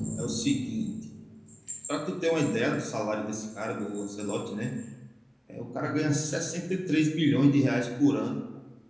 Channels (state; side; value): identical; both; correlation 1.00